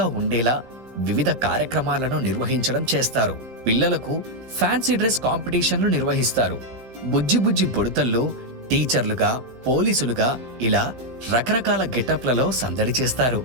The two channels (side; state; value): left; late; 15 ms